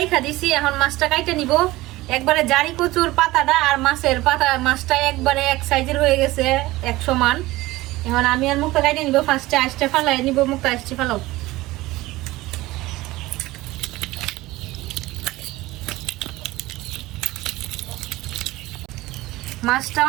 দিছি, এখন মাছটা কাইটা নিব। একবারে জারি কচুর পাতাটা আর মাছের পাতা, মাছটা একবারে এক সাইজের হয়ে গেছে, এক সমান। এখন আমি আর মুখটা কাইটে নিব। ফার্স্টে আইসটা ফালাই নিব, মুখটা আইসটি ফালাও। মাছটা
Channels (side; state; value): left; quieter; 18.7 dB